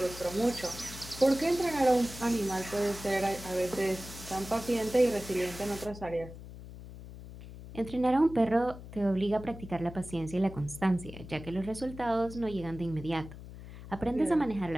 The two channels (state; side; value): noise; left; hum, 14 dB below the sound